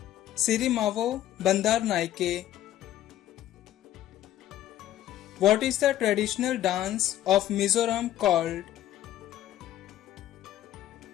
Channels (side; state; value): right; quieter; 12.7 dB